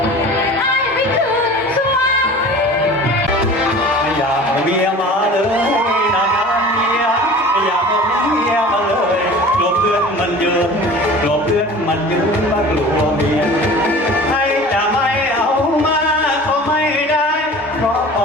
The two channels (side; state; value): both; normal; correlation 0.40